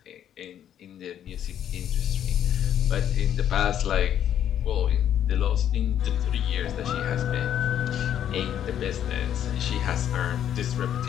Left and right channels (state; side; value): quieter; right; 10.1 dB